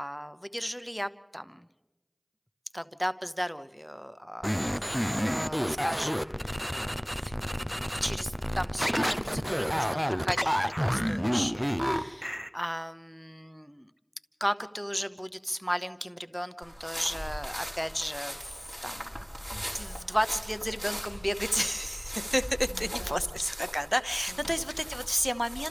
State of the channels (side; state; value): both; identical; correlation 1.00